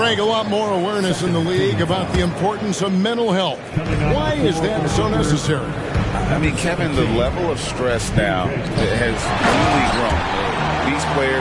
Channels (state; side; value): identical; both; correlation 1.00